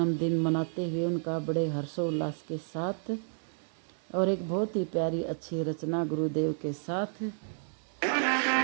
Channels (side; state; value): left; silent; 57 dB below the other